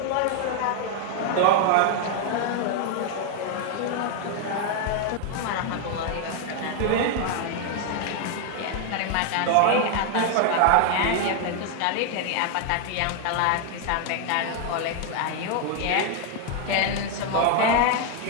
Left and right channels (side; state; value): both; different; correlation 0.00